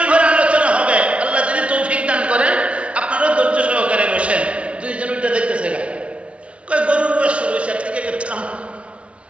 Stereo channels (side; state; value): left; late; 0.061 ms